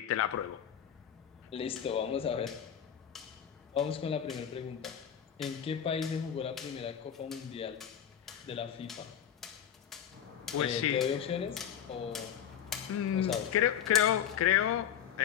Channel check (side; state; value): right; quieter; 9.2 dB